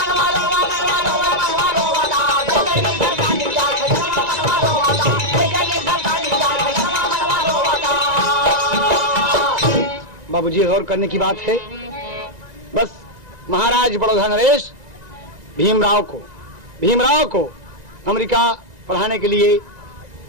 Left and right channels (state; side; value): late; left; 1.9 ms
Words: बाबूजी गौर करने की बात है। बस महाराज बड़ौदा नरेश भीमराव को अमेरिका पढ़ाने के लिए